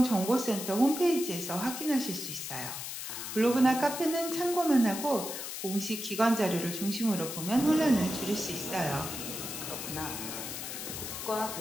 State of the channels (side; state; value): left; noise; hiss, 7 dB below the sound